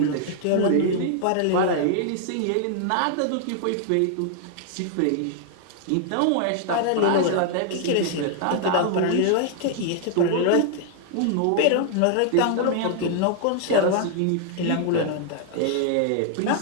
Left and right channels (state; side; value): different; both; correlation 0.00